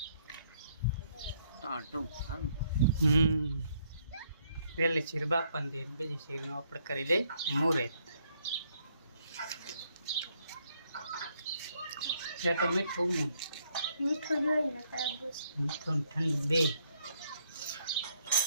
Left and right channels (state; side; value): inverted; both; correlation -0.71